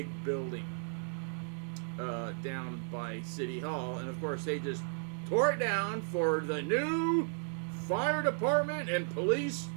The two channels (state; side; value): silent; left; 55 dB below the other